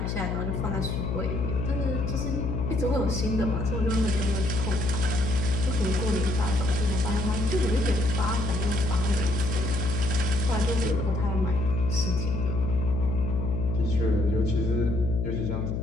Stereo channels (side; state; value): left; noise; hum, 1 dB below the sound